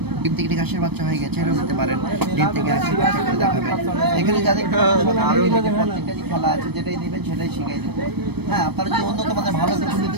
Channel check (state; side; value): late; left; 0.97 ms